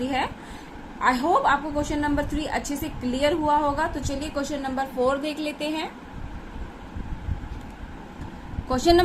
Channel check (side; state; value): both; identical; correlation 1.00